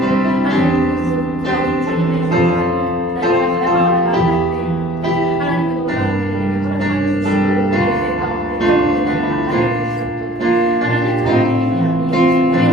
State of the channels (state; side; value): normal; both; correlation 0.52